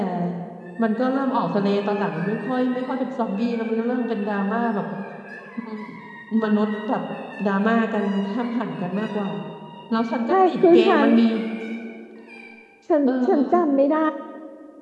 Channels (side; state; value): both; identical; correlation 1.00